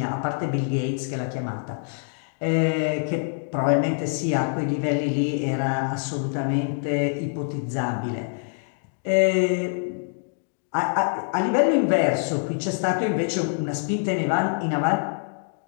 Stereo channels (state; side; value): silent; right; digital silence